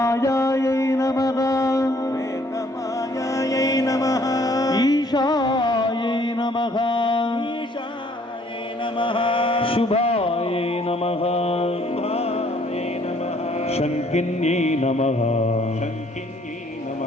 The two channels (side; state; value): both; normal; correlation 0.62